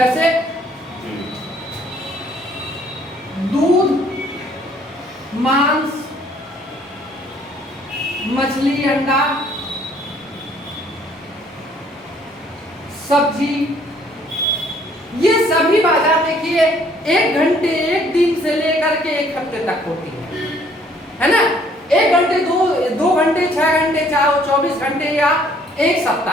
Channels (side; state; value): both; normal; correlation 0.61